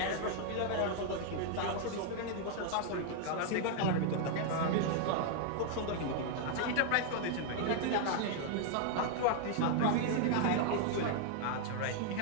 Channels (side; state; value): both; different; correlation 0.00